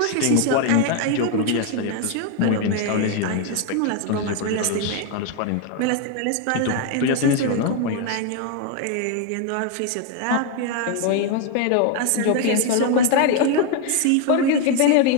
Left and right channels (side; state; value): both; different; correlation 0.01